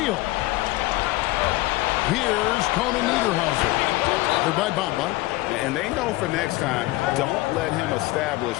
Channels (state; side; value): quieter; right; 19.2 dB